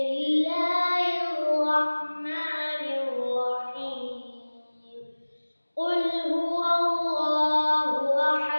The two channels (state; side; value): inverted; both; correlation -1.00